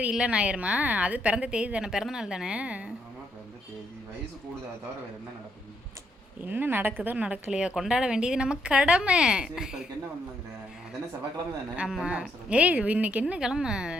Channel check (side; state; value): both; normal; correlation 0.75